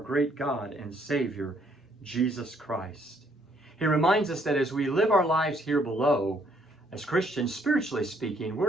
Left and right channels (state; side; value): normal; both; correlation 0.68